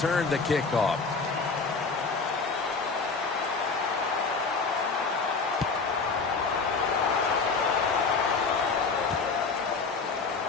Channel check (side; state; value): right; quieter; 4.6 dB